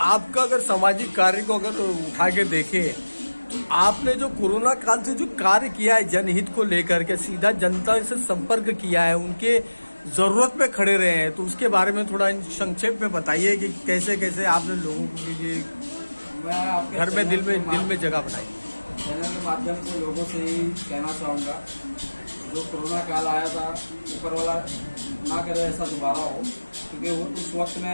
आपका अगर सामाजिक कार्य को अगर उठा के देखें, आपने जो कोरोना काल से जो कार्य किया है जनहित को लेकर के, सीधा जनता से संपर्क किया है, उनके जरूरत पे खड़े रहे हैं, तो उसके बारे में थोड़ा संक्षेप में बताइए कि कैसे कैसे आपने लोगों के लिए घर में दिल में जगह बनाई। चैनल के माध्यम से लोगों से ही कहना चाहूँगा, जो कोरोना काल आया था, ऊपर वाला ना करे ऐसा दोबारा हो। क्योंकि वो उस वक्त में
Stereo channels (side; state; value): both; inverted; correlation -1.00